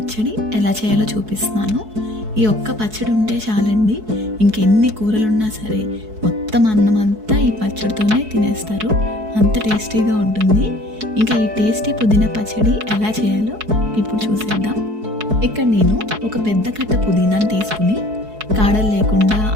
ఎలా చేయాలో చూపిస్తున్నాను. ఈ ఒక్క పచ్చడి ఉంటే చాలండి, ఇంకెన్ని కూరలున్నా సరే మొత్తం అన్నం అంతా ఈ పచ్చడితోనే తినేస్తారు. అంత టేస్టీగా ఉంటుంది. ఇంకా ఈ టేస్టీ పుదీనా పచ్చడి ఎలా చేయాలో ఇప్పుడు చూసేద్దాం. ఇక్కడ నేను ఒక పెద్ద కట్ట పుదీనాను తీసుకుని కాడలు లేకుండా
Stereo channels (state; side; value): late; left; 4.7 ms